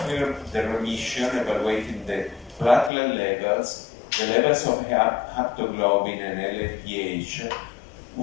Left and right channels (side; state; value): right; drops out; at 2.9 s